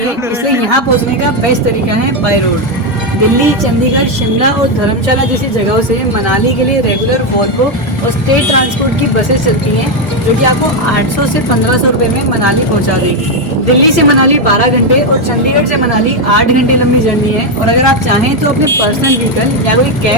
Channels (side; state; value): both; normal; correlation 0.05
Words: है, इसलिए यहाँ पहुँचने का बेस्ट तरीका है बाय रोड। दिल्ली, चंडीगढ़, शिमला और धर्मशाला जैसी जगहों से मनाली के लिए रेगुलर वॉल्वो और स्टेट ट्रांसपोर्ट की बसेस चलती हैं, जो कि आपको 800 से 1500 रुपए में मनाली पहुंचा देगी। दिल्ली से मनाली 12 घंटे और चंडीगढ़ से मनाली 8 घंटे लंबी जर्नी है। और अगर आप चाहें तो अपने पर्सनल व्हीकल या कोई